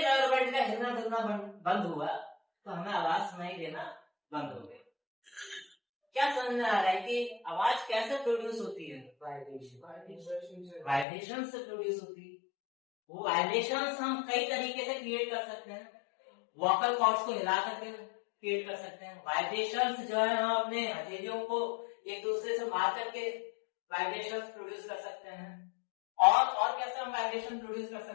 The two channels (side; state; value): right; drops out; at 11.1 s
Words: रबर बैंड का हिलना डुलना बंद हुआ, तो हमें आवाज सुनाई देना बंद हो गई। क्या समझ में आ रहा है कि आवाज कैसे प्रोड्यूस होती है? वाइब्रेशन से प्रोड्यूस होती है। वो वाइब्रेशंस हम कई तरीके से क्रिएट कर सकते हैं। वोकल कॉर्ड्स को हिला करके क्रिएट कर सकते हैं। वाइब्रेशंस जो है हम अपने हथेलियों को एक दूसरे से मार करके वाइब्रेशंस प्रोड्यूस कर सकते हैं। और कैसे हम वाइब्रेशन प्रोड्यूस कर